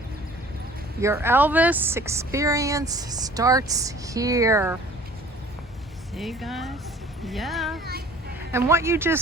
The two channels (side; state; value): both; normal; correlation 0.49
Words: Your Elvis experience starts here. See, guys? Yeah. And what you